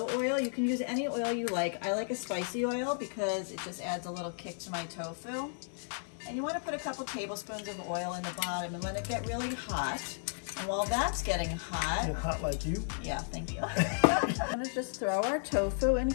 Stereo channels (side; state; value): right; silent; 55 dB below the other